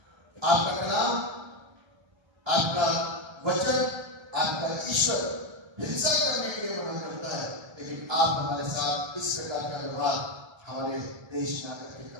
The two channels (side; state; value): left; late; 1.3 ms